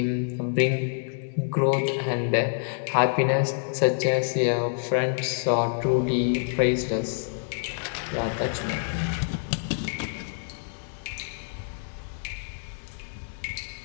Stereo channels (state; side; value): silent; right; digital silence